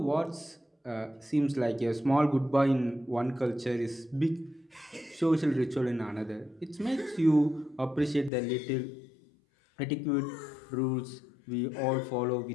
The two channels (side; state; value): right; drops out; at 8.3 s